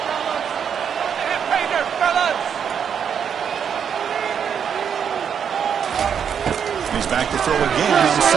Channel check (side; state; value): left; quieter; 7.7 dB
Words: He's back to throw again on